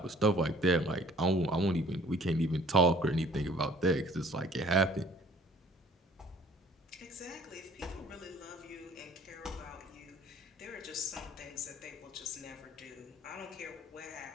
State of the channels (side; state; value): both; normal; correlation 0.54